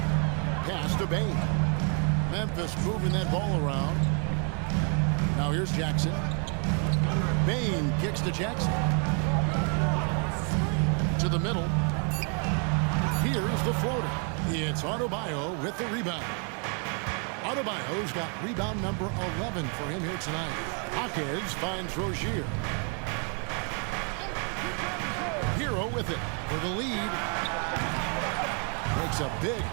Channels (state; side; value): quieter; left; 39.4 dB